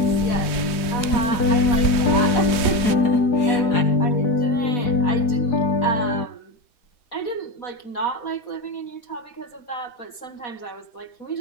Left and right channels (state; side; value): late; right; 3.2 ms